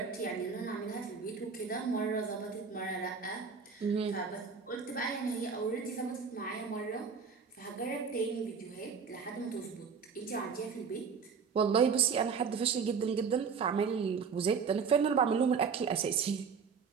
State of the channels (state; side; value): quieter; left; 5.9 dB